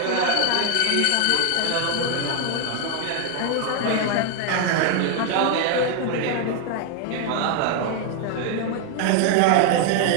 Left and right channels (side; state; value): both; different; correlation 0.01